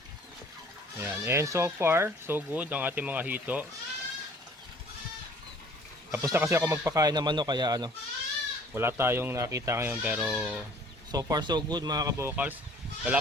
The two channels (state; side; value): normal; both; correlation 0.53